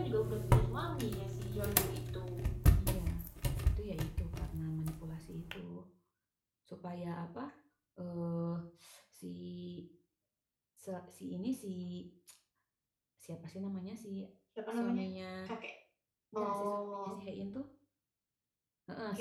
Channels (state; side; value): identical; both; correlation 1.00